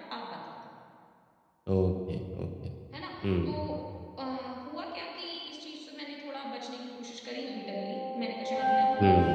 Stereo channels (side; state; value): both; identical; correlation 1.00